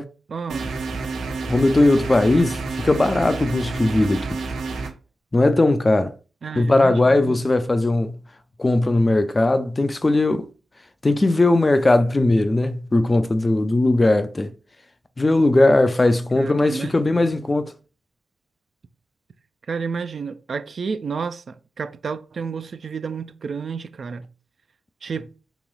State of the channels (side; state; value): both; normal; correlation 0.96